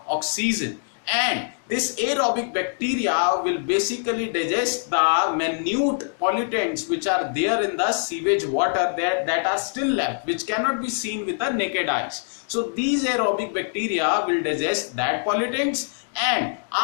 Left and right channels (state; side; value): silent; right; digital silence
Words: oxygen. And this aerobic bacteria will basically digest the minute pollutants which are there in the sewage water that are still left, which cannot be seen with the naked eyes. So these aerobic bacteria will digest that pollutants, and